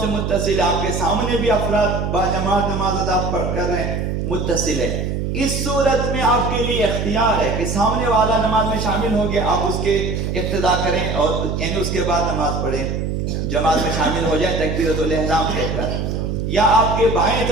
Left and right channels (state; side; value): noise; right; hum, 2 dB below the sound